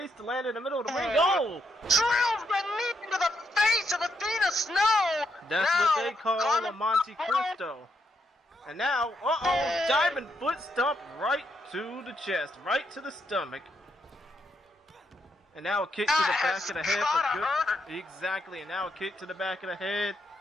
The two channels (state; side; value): normal; both; correlation 0.78